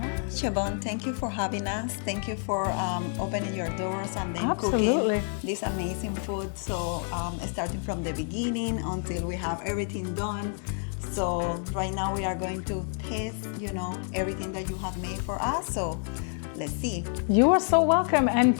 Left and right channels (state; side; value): silent; right; 59 dB below the other